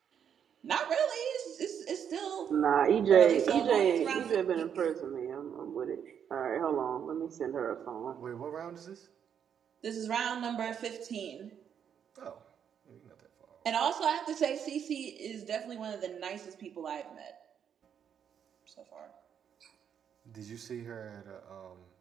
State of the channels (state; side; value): quieter; left; 8.2 dB